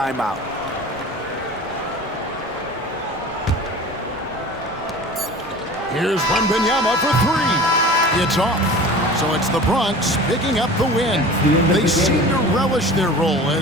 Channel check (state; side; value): normal; both; correlation 0.39